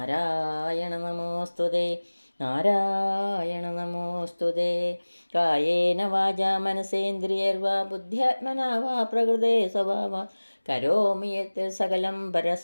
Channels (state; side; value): inverted; both; correlation -1.00